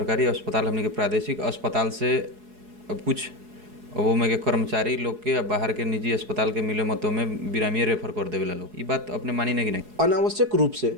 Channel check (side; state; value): left; late; 4.7 ms